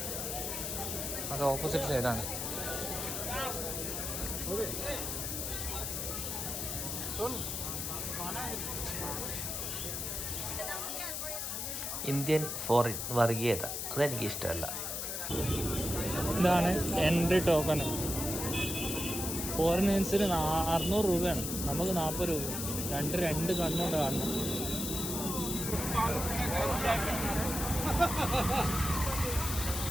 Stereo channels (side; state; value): left; noise; hiss, 3 dB below the sound